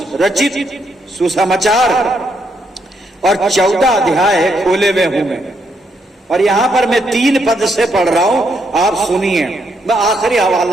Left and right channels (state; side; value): normal; both; correlation 0.76